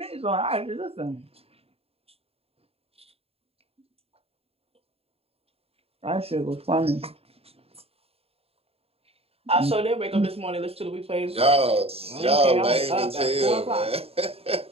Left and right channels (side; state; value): left; late; 0.29 ms